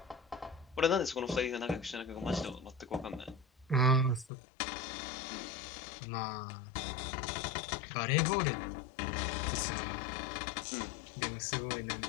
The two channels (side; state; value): right; drops out; at 4.3 s